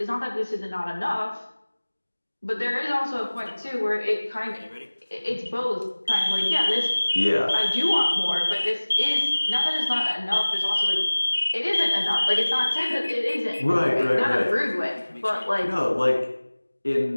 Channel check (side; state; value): both; inverted; correlation -1.00